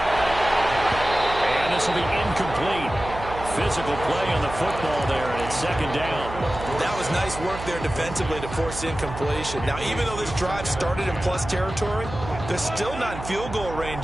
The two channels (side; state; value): right; noise; hum, 10 dB below the sound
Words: And this will be incomplete. Physical play on the football there, and it's 2nd down. That was nice work there defensively to force incompletion. Now, even though this drive started in plus territory, they're still not in field goal